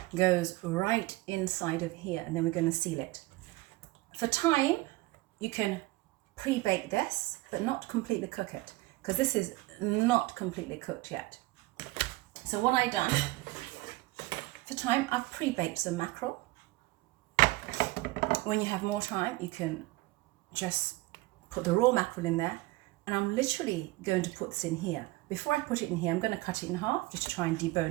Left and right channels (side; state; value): left; quieter; 20.8 dB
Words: goes right inside of here, and then we're going to seal it. For time, you can pre-bake this, but not completely cook it, because this is not completely cooked yet. So what I've done, for time, I've pre-baked some mackerel. When you have more time, you can just put the raw mackerel in there, and I'm literally going to put this in here. Before I put it in here, I'm going to cut it in half just to try and